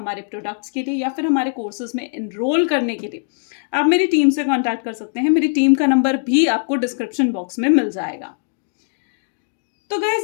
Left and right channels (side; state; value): right; silent; digital silence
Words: प्रोडक्ट्स के लिए या फिर हमारे कोर्सेज में एनरोल करने के लिए आप मेरी टीम से कांटेक्ट कर सकते हैं। मेरी टीम का नंबर भी आपको डिस्क्रिप्शन बॉक्स में मिल जाएगा। तो